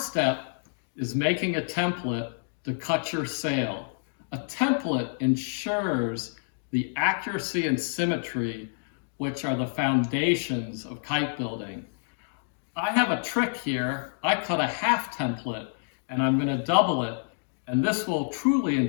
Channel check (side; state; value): right; silent; digital silence